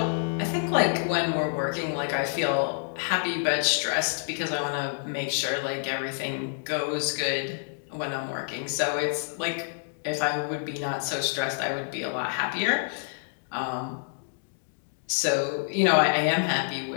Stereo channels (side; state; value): right; silent; digital silence